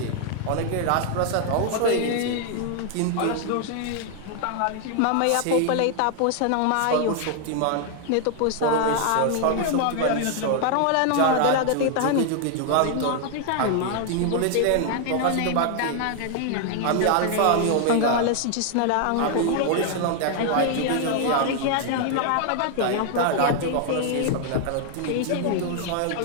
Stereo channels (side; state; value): both; different; correlation 0.00